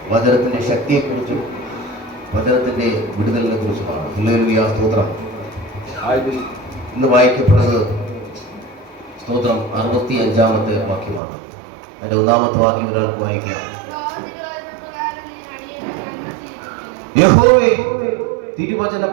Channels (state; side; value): drops out; left; at 11.2 s